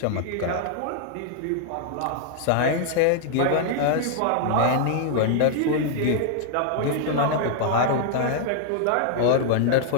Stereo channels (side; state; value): both; different; correlation -0.01